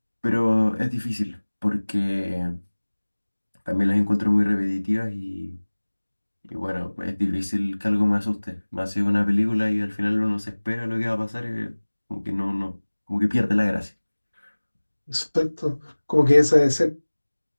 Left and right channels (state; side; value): inverted; both; correlation -1.00